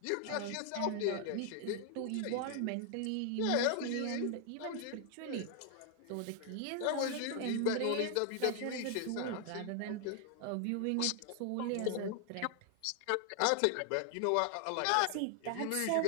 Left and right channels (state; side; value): different; both; correlation 0.00